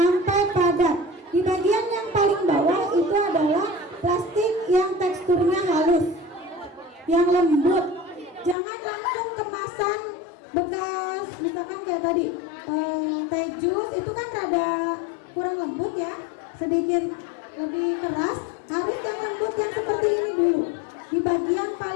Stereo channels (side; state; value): right; drops out; at 8.6 s